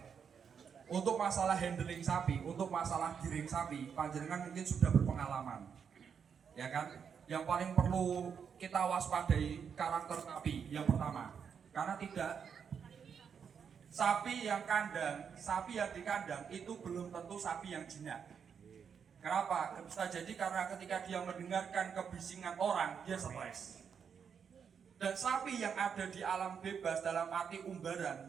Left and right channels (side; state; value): left; quieter; 7.0 dB